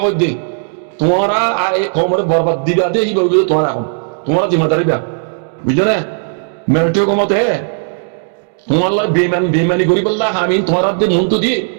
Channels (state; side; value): silent; left; digital silence